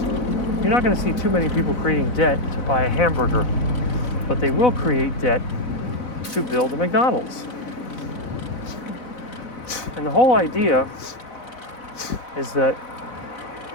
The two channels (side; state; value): right; late; 4.0 ms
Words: you're not going to see too many people creating debt to buy a hamburger, but they will create debt to build a McDonald's. And the whole idea is that